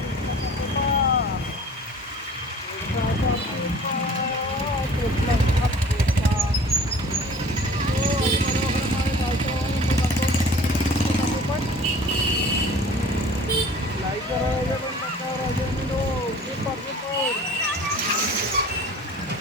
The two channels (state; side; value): normal; both; correlation 0.46